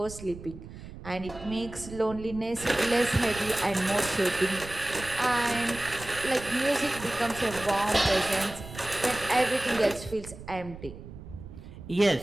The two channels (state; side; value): noise; right; rumble, 14 dB below the sound